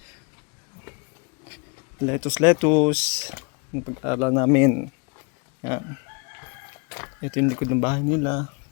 Lettuce. Yung pag-aral namin. Yan. Ito yung likod ng bahay nila.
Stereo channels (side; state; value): right; quieter; 33.0 dB